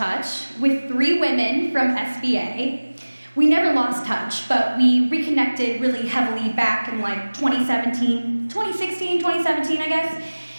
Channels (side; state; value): both; inverted; correlation -1.00